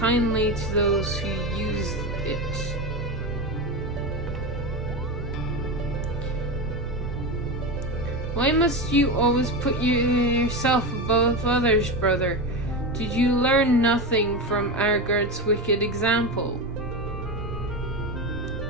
to those who use it. Why must you always put yourself above others, brother? Did you learn nothing from Argard's wicked example?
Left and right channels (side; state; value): both; normal; correlation 0.19